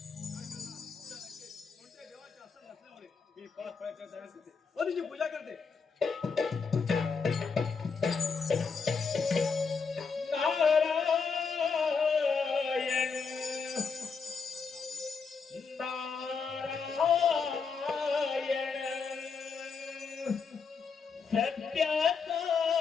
कोणत्या देवाचे आसन नसल्यामुळे मी पाच फळाच्या तयार करते व तिची पूजा करते. नारायण नारायण सत्याचा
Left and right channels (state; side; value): quieter; right; 5.4 dB